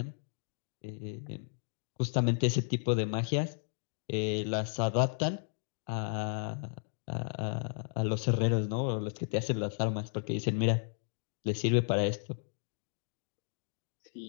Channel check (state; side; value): silent; right; digital silence